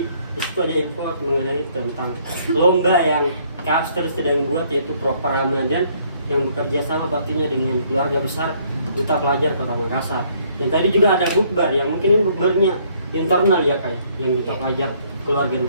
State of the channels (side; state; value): both; inverted; correlation -0.64